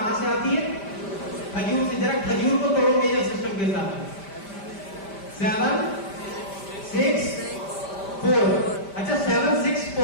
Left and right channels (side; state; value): right; late; 5.1 ms